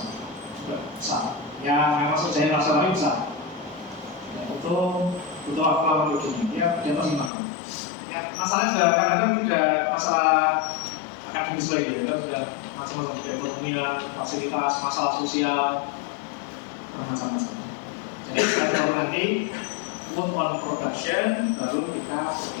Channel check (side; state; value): right; drops out; at 7.3 s